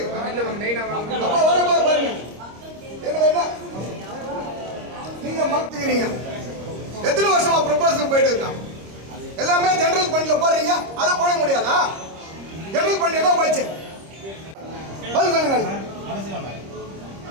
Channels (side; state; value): left; late; 26 ms